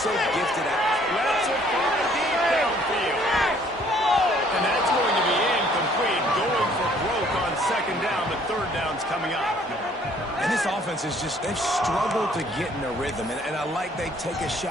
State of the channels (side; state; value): both; normal; correlation 0.60